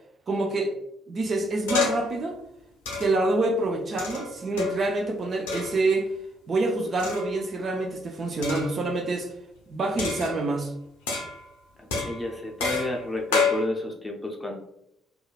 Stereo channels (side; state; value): both; normal; correlation 0.69